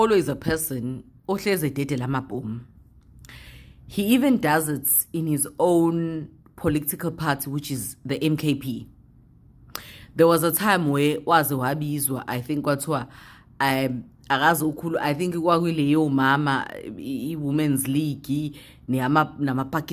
a person ohleze dede lamabhomu. He even does it in his own political party, which is the MKP. There was a time where waze wabizwa, I think kwathiwa akazi ukhulu, I think kwakuleyo mama i-Women's League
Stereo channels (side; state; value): both; identical; correlation 1.00